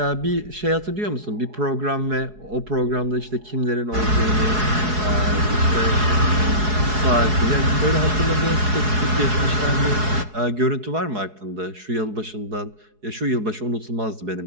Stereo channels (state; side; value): late; left; 4.7 ms